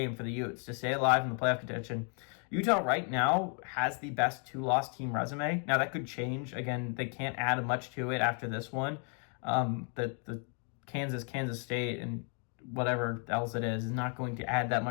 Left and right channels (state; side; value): quieter; right; 39.4 dB